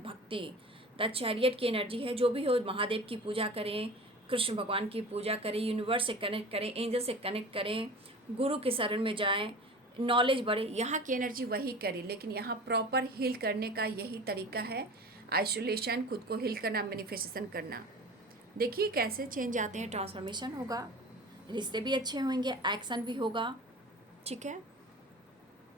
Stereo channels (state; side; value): normal; both; correlation 0.37